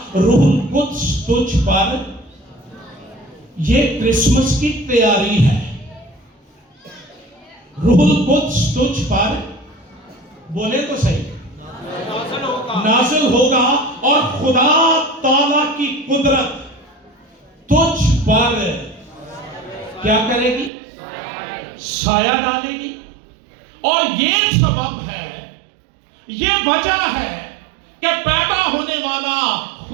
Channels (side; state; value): left; drops out; at 20.7 s